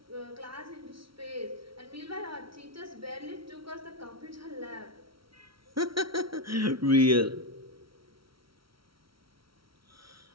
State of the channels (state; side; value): late; left; 0.74 ms